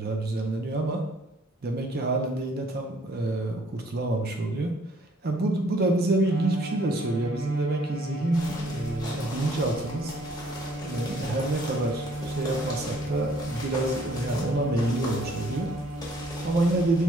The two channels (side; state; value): both; normal; correlation 0.62